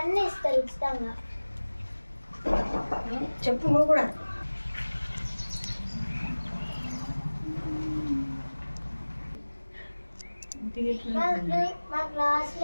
అన్నీ ఇస్తారు ఉచితంగా. చెప్పు నువ్వు కూడా. మా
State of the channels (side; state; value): both; inverted; correlation -1.00